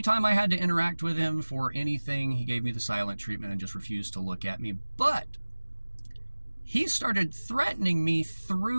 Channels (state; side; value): inverted; both; correlation -1.00